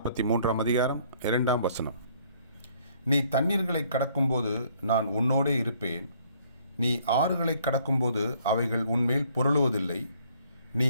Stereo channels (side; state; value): both; inverted; correlation -0.63